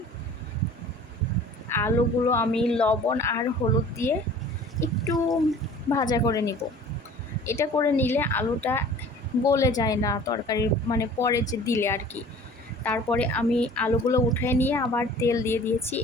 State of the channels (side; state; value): both; normal; correlation 0.46